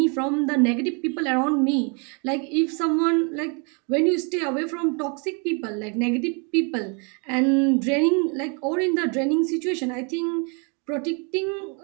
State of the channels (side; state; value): left; quieter; 35.5 dB